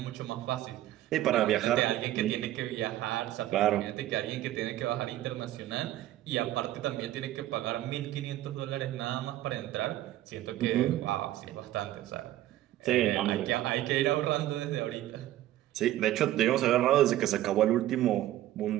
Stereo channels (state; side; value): quieter; left; 14.2 dB